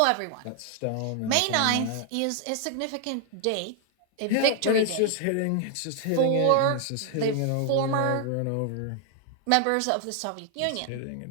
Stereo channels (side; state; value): both; different; correlation 0.00